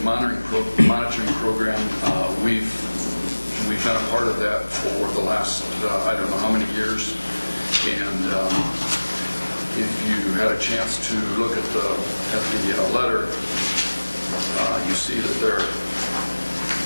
monitoring program, we've been a part of that for the last I don't know how many years, and if you had a chance to look at the letter, you see that they're,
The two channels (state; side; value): inverted; both; correlation -1.00